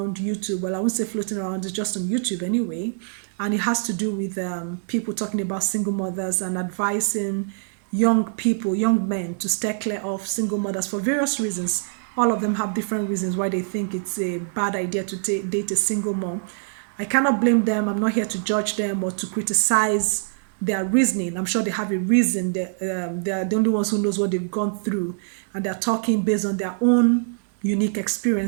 YouTube. Well, I won't say floating around, it's just on YouTube anyway, and it has to do with people talking about single mothers and advising young people, young men, to stay clear of single mothers for various reasons. All of them have different reasons why they think it's a bad idea to date a single mom. I cannot blame them. I'm not here to judge them or to criticize their reasoning. I'm sure they have a reason. They are the only ones who knows what they've gone through, and they're talking based on their own unique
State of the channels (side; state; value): left; silent; 63 dB below the other